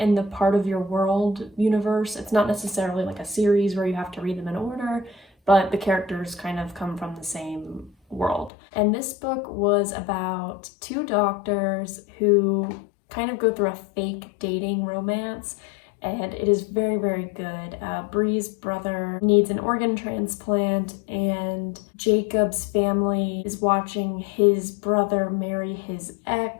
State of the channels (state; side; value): drops out; right; at 8.5 s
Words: the Part of Your World universe. It's not necessarily like a series where you have to read them in order, but the characters kind of come from the same world. And this book was about 2 doctors who kind of go through a fake dating romance, and it is very, very good. Bree's brother needs an organ transplant, and Jacob's family is watching his brother marry his